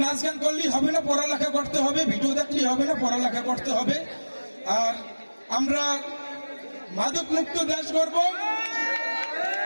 নাচ গান করলেই হবে না, পড়ালেখা করতে হবে, ভিডিও দেখলেই হবে না, পড়ালেখা করতে হবে। আর আমরা মাদক মুক্ত দেশ গড়ব,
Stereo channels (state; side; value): inverted; both; correlation -1.00